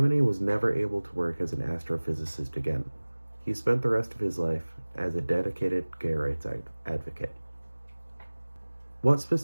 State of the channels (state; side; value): inverted; both; correlation -1.00